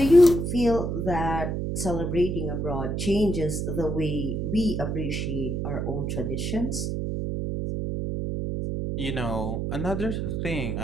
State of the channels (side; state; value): right; noise; hum, 1 dB below the sound